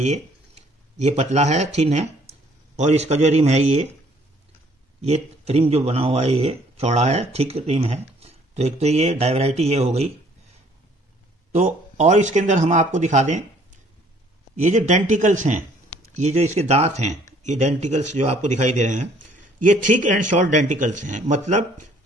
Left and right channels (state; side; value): normal; both; correlation 0.60